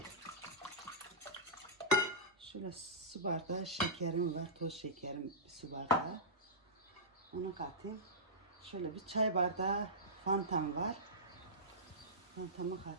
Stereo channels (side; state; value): both; normal; correlation -0.17